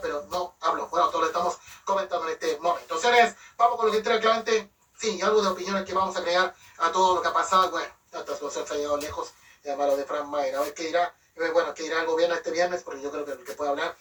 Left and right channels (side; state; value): both; identical; correlation 1.00